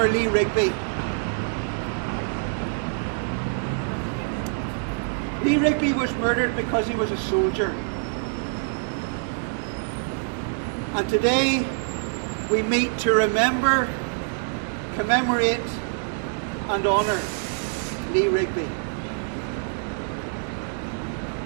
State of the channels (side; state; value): left; silent; 61 dB below the other